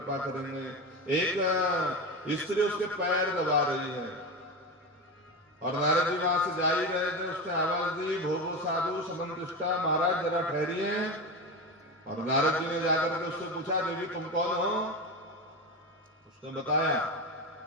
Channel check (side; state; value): both; normal; correlation 0.20